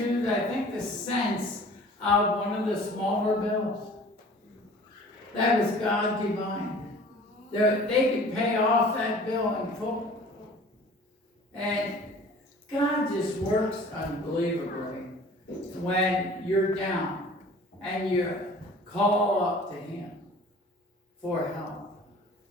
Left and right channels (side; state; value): both; normal; correlation 0.46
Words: I think, the cents of one of the smaller bills. That was God divine. They could pay off that bill in full. And God just works unbelievably when you're down and you call up to Him for help.